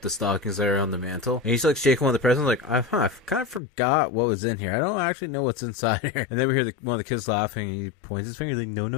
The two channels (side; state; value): right; drops out; at 3.6 s